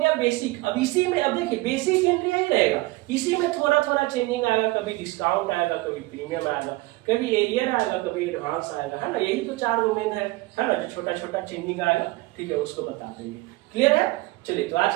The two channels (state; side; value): quieter; left; 20.9 dB